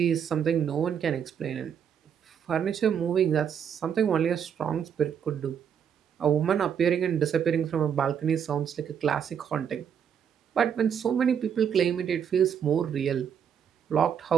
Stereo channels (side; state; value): left; quieter; 8.0 dB